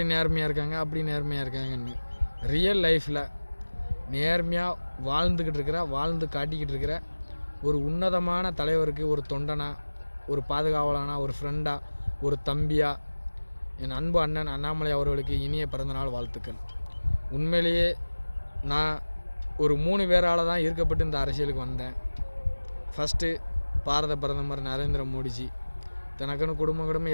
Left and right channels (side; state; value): both; inverted; correlation -1.00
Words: நேர்மையாக இருக்காங்க அப்படி நேர்மையாக இருக்காங்கன்னு. ரியல் லைஃப்பில் நேர்மையாக வாழ்ந்து காட்டிக்கிட்டு இருக்கிற ஒரு உன்னதமான தலைவருக்கு, ஒரு தொண்டனா, ஒரு பாதுகாவலானா, ஒரு ஃப்ரெண்டா, ஒரு தம்பியா, என் அன்பு அண்ணன் அண்ணாமலை அவர்களுக்கு இனிய பிறந்தநாள் வாழ்த்துக்கள். உண்மையிலேயே நான் ஒரு 3 பேரால் தான் ஈர்க்கப்பட்டு இந்த அரசியலுக்கு வந்தேன். ஃபஸ்ட்டு பாரத பிரதமர் நரேந்திர மோடிஜி. தனக்குன்னு குடும்பம்